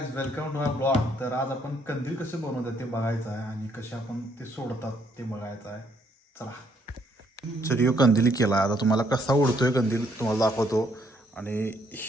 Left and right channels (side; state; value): both; normal; correlation 0.69